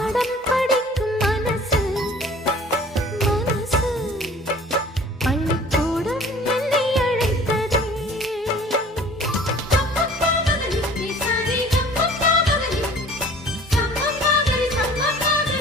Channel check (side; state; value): both; normal; correlation 0.49